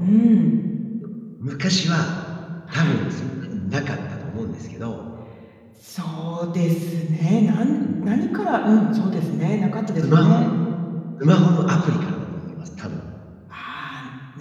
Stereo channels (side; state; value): both; identical; correlation 1.00